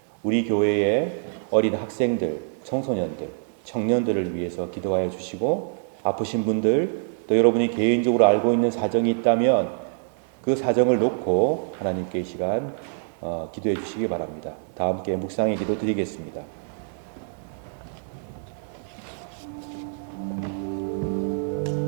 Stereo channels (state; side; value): silent; left; 60 dB below the other